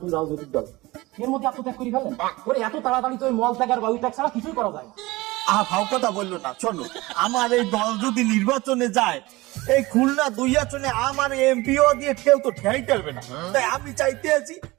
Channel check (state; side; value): quieter; left; 20.9 dB